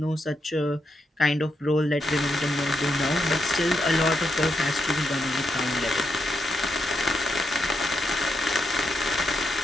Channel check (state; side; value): normal; both; correlation 0.82